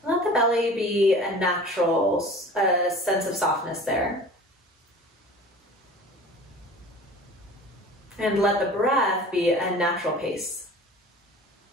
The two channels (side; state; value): both; normal; correlation 0.41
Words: Let the belly be a natural sense of softness there. And let the breath be a natural pace.